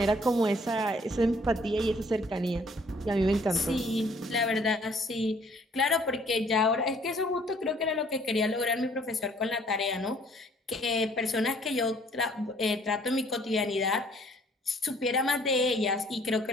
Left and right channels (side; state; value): both; normal; correlation 0.60